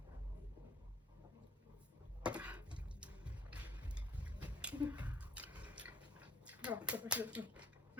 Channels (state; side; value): normal; both; correlation 0.59